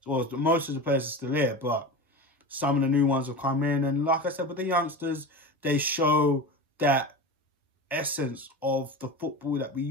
Well, most of the players are still here, but some of the new ones have come in. And like I said, with the youngsters, they show that essence of the football that we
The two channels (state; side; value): normal; both; correlation 0.28